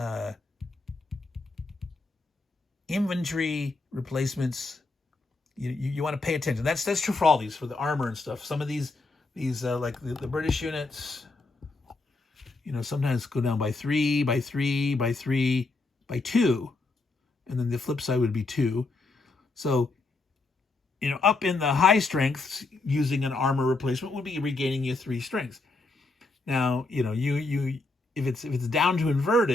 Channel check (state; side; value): quieter; right; 3.4 dB